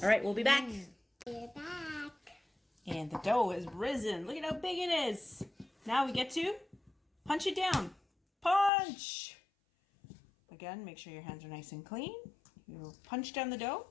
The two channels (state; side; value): drops out; right; at 8.7 s